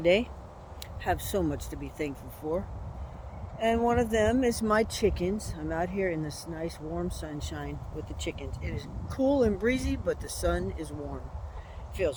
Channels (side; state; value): both; identical; correlation 1.00